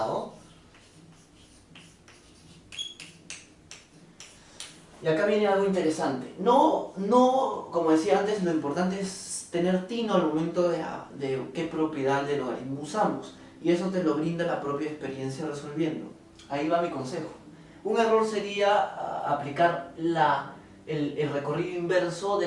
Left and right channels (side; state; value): both; identical; correlation 1.00